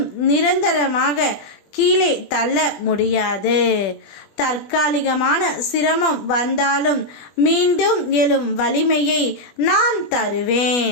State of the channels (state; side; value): late; right; 20 ms